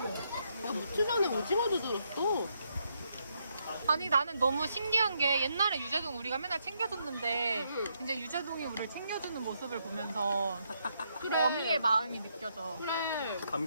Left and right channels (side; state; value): both; inverted; correlation -0.77